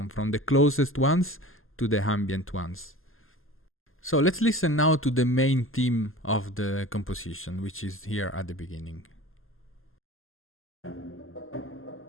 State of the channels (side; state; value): right; late; 0.60 ms